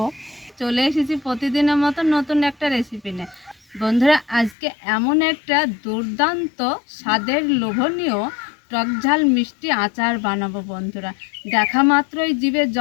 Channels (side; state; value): right; drops out; at 4.5 s